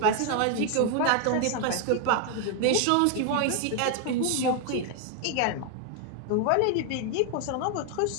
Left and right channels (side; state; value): both; different; correlation 0.00